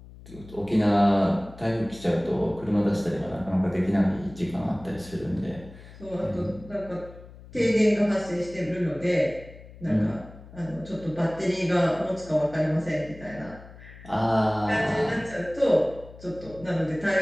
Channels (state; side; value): noise; left; hum, 18 dB below the sound